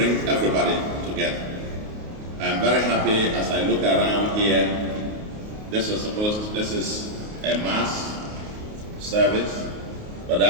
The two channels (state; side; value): late; left; 28 ms